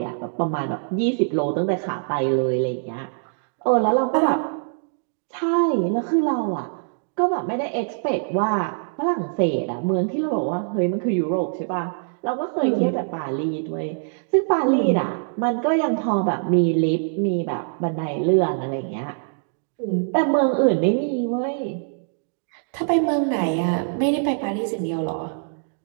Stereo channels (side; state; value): left; silent; digital silence